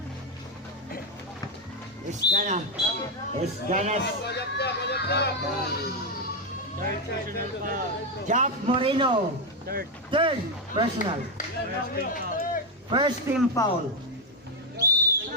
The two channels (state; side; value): normal; both; correlation 0.05